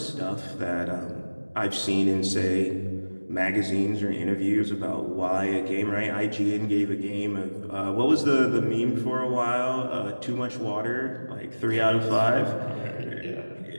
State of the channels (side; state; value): both; inverted; correlation -1.00